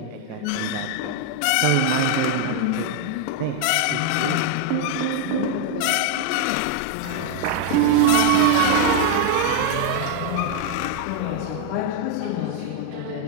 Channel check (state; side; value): different; both; correlation 0.00